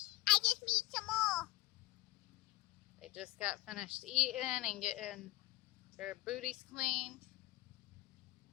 I just need some more. They just got finished eating and getting their booties cleaned.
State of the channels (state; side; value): quieter; right; 19.5 dB